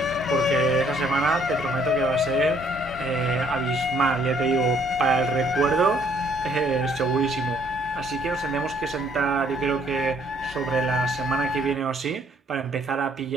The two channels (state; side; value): normal; both; correlation 0.65